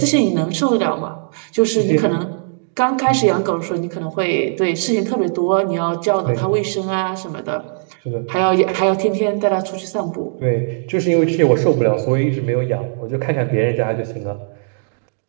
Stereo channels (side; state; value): left; silent; digital silence